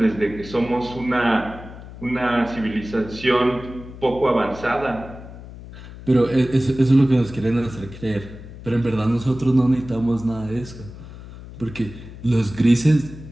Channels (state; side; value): noise; left; hum, 15 dB below the sound